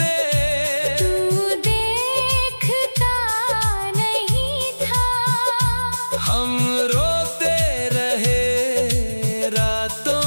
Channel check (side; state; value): both; inverted; correlation -1.00